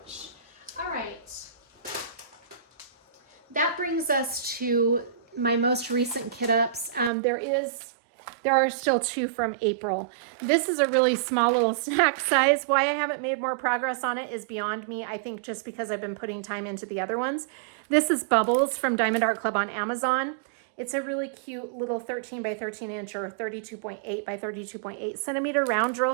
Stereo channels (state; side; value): drops out; left; at 7.1 s